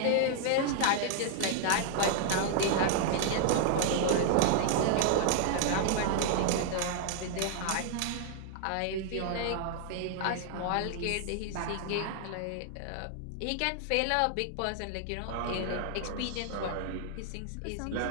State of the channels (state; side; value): different; both; correlation 0.00